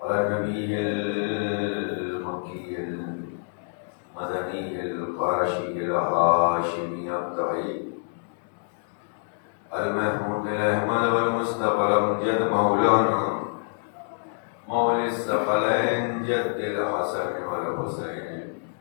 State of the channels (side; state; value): right; silent; digital silence